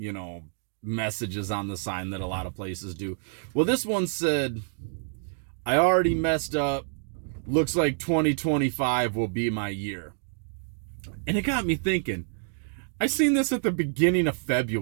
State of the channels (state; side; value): silent; left; digital silence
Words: messages on the sign that a lot of places do. Well, this one said, "I already messed up. Looks like 2025 will be my year." And it got me thinking. I seen this at the beginning of